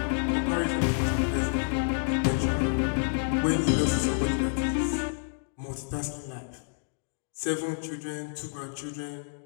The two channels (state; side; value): silent; right; digital silence